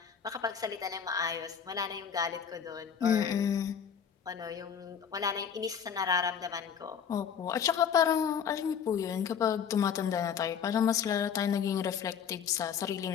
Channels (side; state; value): right; quieter; 7.5 dB